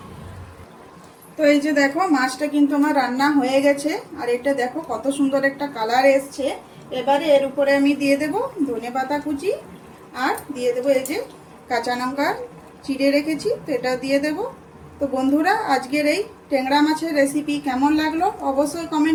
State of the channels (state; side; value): identical; both; correlation 1.00